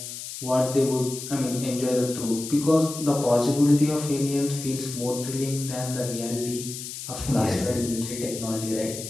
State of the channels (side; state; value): left; noise; hiss, 9 dB below the sound